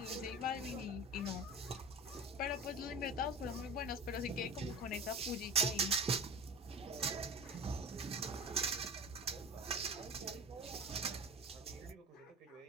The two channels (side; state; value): both; normal; correlation 0.33